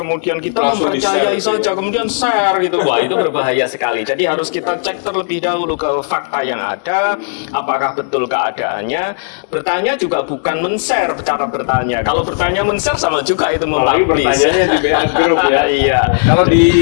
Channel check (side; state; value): right; silent; digital silence